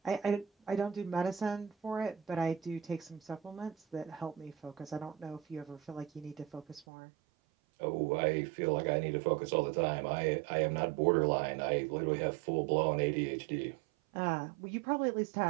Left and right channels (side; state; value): left; drops out; at 6.9 s